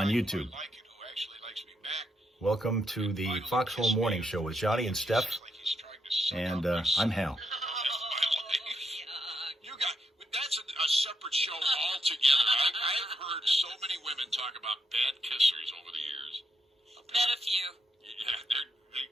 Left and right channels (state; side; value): normal; both; correlation 0.80